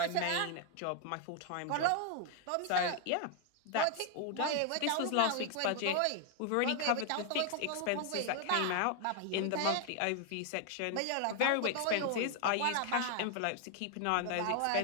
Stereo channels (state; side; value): different; both; correlation 0.00